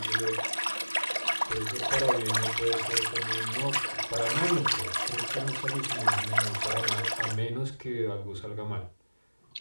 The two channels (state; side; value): inverted; both; correlation -1.00